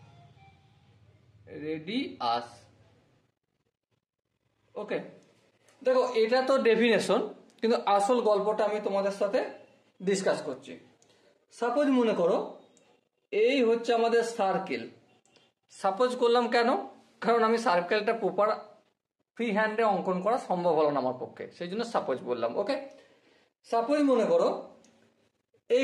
ওকে, দেখো এটা তো ডেফিনেশন, কিন্তু আসল গল্পটা আমি তোমাদের সাথে ডিসকাস করছি। সাপোজ মনে করো এই হচ্ছে আমাদের সার্কেল। সাপোজ করলাম কেন? কারণ আমি সার্কেলটা প্রপার ফ্রি হ্যান্ডে অঙ্কন করা সম্ভব হলো না আমার পক্ষে, সেই জন্য সাপোজ বললাম। ওকে, সাপোজ মনে করো এই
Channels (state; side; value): identical; both; correlation 1.00